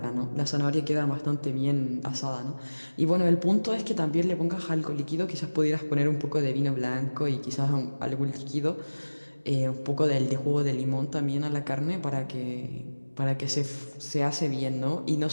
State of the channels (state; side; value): inverted; both; correlation -1.00